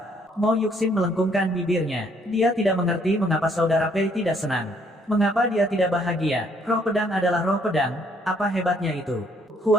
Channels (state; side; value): normal; both; correlation 0.66